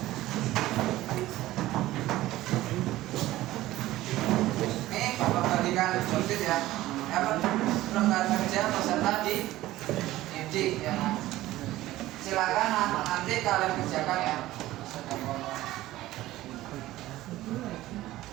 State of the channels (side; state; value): left; quieter; 16.1 dB